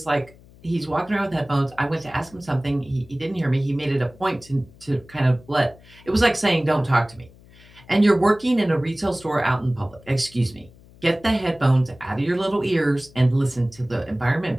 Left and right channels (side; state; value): left; noise; hum, 24 dB below the sound